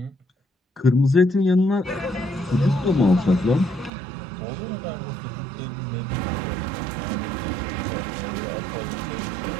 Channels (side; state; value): left; drops out; at 3.9 s